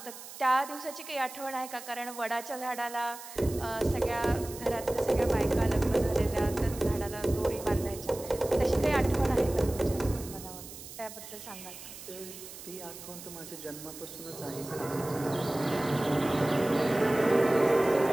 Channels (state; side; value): noise; right; hiss, 14 dB below the sound